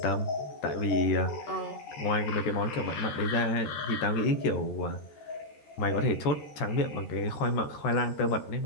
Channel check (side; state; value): right; late; 13 ms